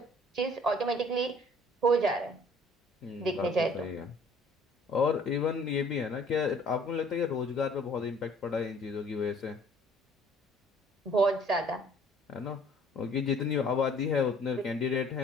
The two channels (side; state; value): both; normal; correlation 0.56